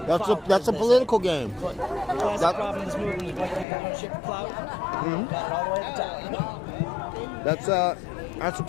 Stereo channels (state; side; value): drops out; right; at 3.7 s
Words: That's a political game. But the classic problem in this movement is black people don't shit for clout. Mm-hmm. Got it all the way at the top. That's the